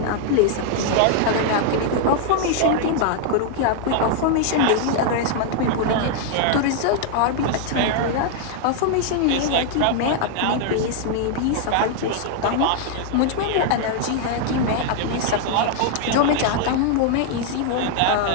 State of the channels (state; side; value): different; both; correlation 0.00